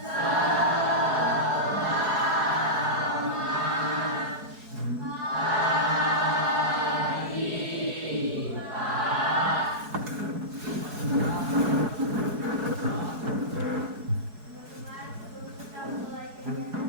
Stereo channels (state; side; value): late; left; 4.7 ms